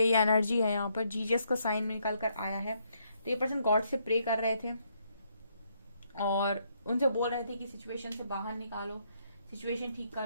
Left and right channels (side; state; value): both; inverted; correlation -0.73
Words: ये एनर्जी है यहाँ पर, जीजस का साइन में निकल कर आया है। तो ये पर्सन गॉड से प्रे कर रहे थे और उनसे बोल रहे थे कि सिचुएशन से बाहर निकालो, सिचुएशन ठीक